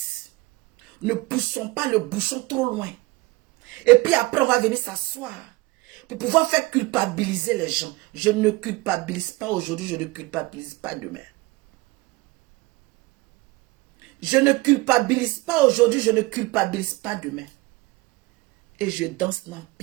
Ne poussons pas le bouchon trop loin. Et puis après, on va venir s'asseoir pour pouvoir faire culpabiliser les gens. Je ne culpabilise pas aujourd'hui, je ne culpabilise pas demain. Je ne culpabilise pas aujourd'hui, je ne culpabilise pas demain. Et je danse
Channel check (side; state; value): left; quieter; 21.7 dB